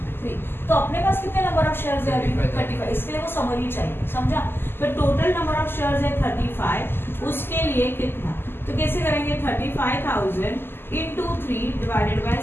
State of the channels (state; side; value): late; right; 0.11 ms